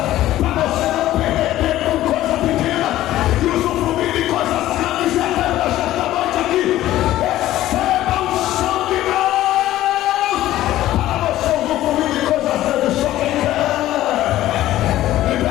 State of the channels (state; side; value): quieter; right; 14.4 dB